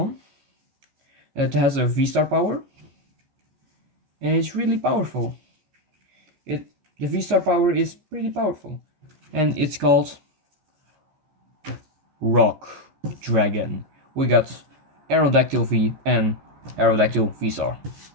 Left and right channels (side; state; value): left; late; 14 ms